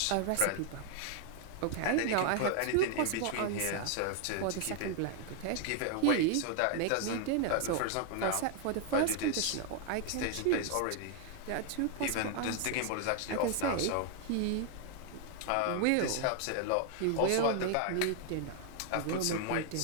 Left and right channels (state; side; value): different; both; correlation 0.00